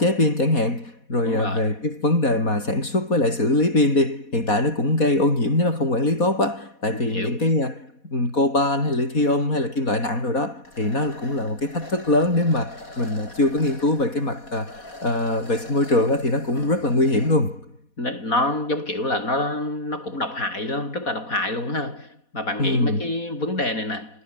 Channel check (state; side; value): late; right; 4.1 ms